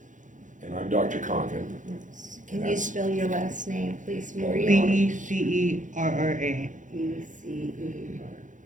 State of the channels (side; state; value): left; late; 0.37 ms